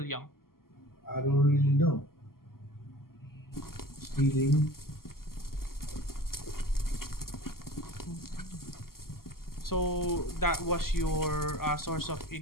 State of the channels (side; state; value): right; late; 0.92 ms